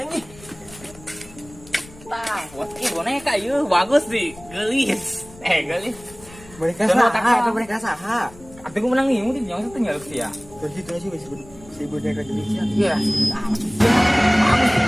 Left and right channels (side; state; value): left; noise; rumble, 21 dB below the sound